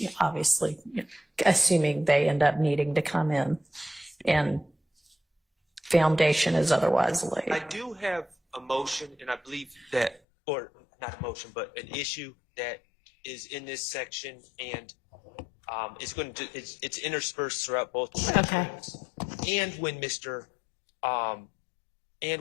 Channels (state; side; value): drops out; right; at 10.2 s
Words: obviously assuming they end up needing to come in and foundation is otherwise laid. I do have a motion, and I believe that, or not a motion, but an issue that is in this section, and it's interspersed throughout both Okay. sections. And when Mr.